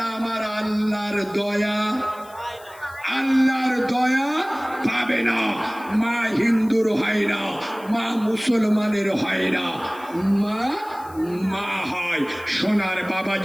আমার আল্লাহর দয়া, আল্লাহর দয়া পাবে না। মা হিন্দুর হয় না, মা মুসলমানের হয় না, মা মা হয়। সোনার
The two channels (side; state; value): left; noise; hiss, 24 dB below the sound